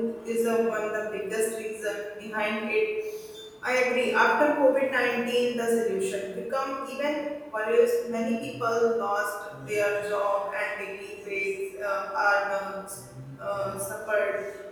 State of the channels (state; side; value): identical; both; correlation 1.00